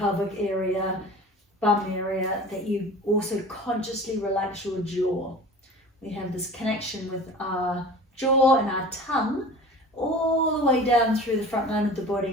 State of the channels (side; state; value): both; normal; correlation 0.39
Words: area, bum area, that you also consciously relax your jaw. We have this connection with our jaw and our tongue all the way down through the front line of the